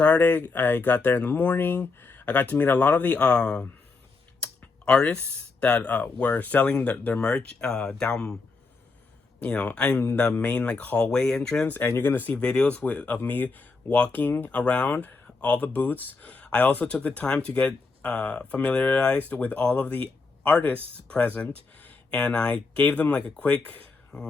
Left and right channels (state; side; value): quieter; right; 4.1 dB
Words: I got there in the morning. I got to meet a lot of the artists that were selling their merch down. You know, I'm the main hallway entrance, and you're gonna see videos of me walking around all the booths. I also took the time to get familiarized with all of the artists present, and I gave them a quick